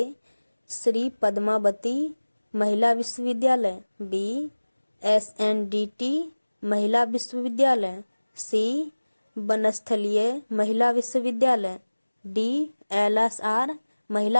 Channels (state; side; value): inverted; both; correlation -1.00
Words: श्री पद्मावती महिला विश्वविद्यालय, बी SNDT महिला विश्वविद्यालय, सी बनस्थलीय महिला विश्वविद्यालय, डी LSR